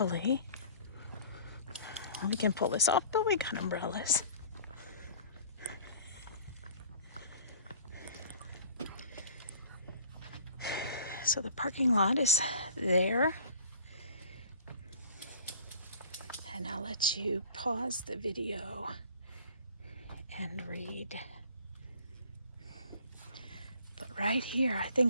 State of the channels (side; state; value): both; inverted; correlation -0.47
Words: we can pull this off, but we got umbrellas. So the parking lot is there. And I'll let you pause the video and read. But right here, I